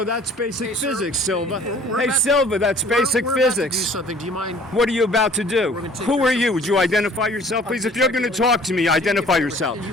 that's basic physics, Silva? Hey, Silva, that's basic physics. About to do something. Do you mind? What are you about to do? Who are you? Would you identify yourself, please? If you're going to talk to me, identify yourself. Can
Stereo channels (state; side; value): normal; both; correlation 0.53